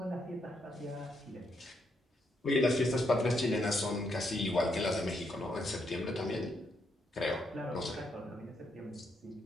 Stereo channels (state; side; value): normal; both; correlation 0.77